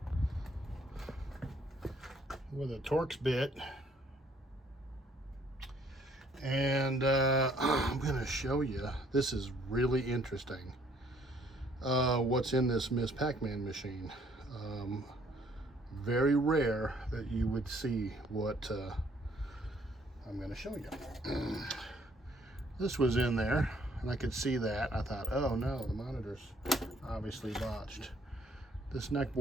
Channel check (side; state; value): both; normal; correlation 0.63